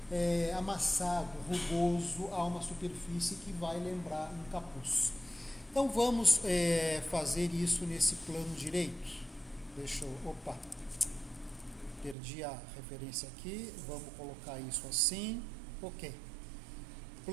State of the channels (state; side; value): drops out; left; at 12.2 s